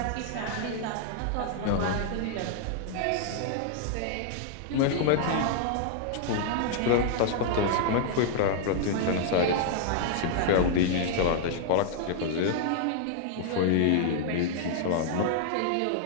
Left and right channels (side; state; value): both; different; correlation -0.01